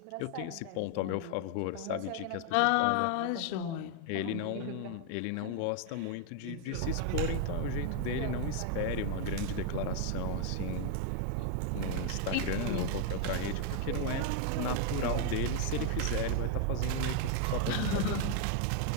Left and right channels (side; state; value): both; different; correlation 0.00